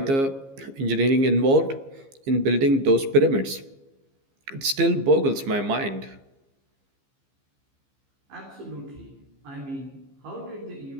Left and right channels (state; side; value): late; left; 15 ms